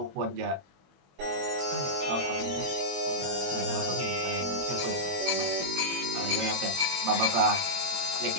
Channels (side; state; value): left; late; 22 ms